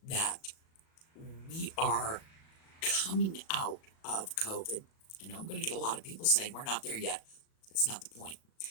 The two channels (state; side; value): late; right; 37 ms